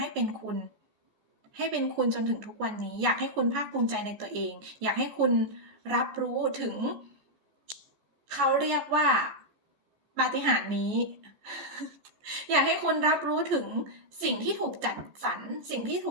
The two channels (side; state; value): left; late; 14 ms